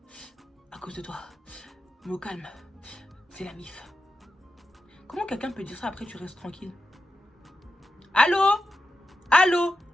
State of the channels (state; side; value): normal; both; correlation 0.89